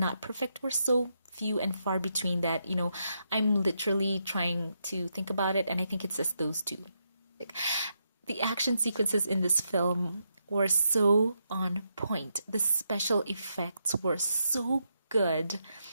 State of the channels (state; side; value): inverted; both; correlation -0.82